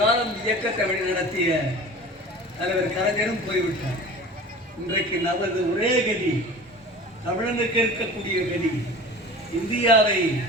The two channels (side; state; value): both; normal; correlation 0.39